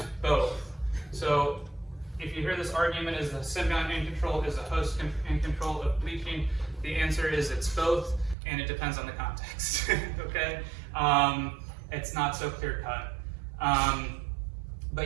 both. So if you hear this argument, is the symbiont in control, is the host in control of bleaching? The answer is it's both, and it depends on the context, okay? It's not so clear cut.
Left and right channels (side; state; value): left; drops out; at 8.3 s